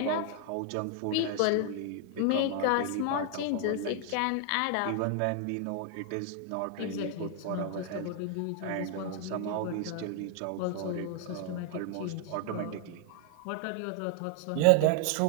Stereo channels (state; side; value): different; both; correlation 0.00